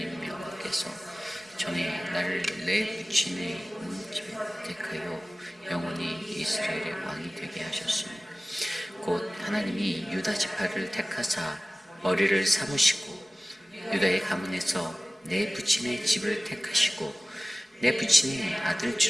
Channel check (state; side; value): normal; both; correlation 0.97